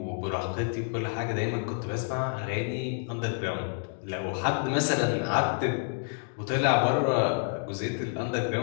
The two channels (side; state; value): right; silent; 59 dB below the other